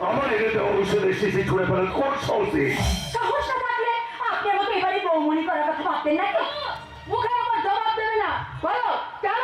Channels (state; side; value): identical; both; correlation 1.00